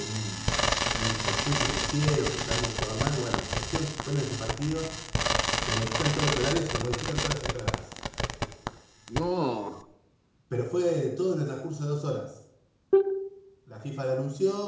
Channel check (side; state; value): both; identical; correlation 1.00